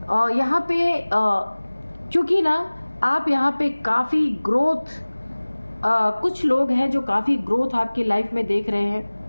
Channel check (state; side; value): inverted; both; correlation -1.00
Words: यहाँ पे क्योंकि ना आप यहाँ पे काफ़ी ग्रोथ, कुछ लोग हैं जो काफ़ी ग्रोथ आपकी लाइफ में देख रहे